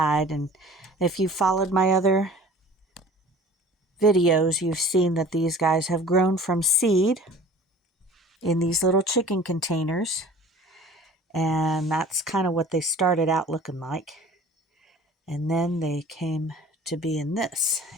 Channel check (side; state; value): both; normal; correlation 0.45